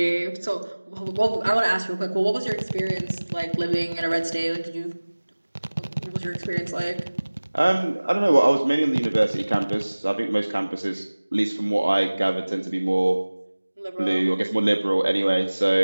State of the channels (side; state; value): both; inverted; correlation -1.00